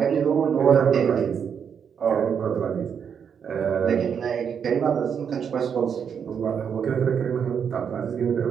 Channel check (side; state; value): left; quieter; 7.4 dB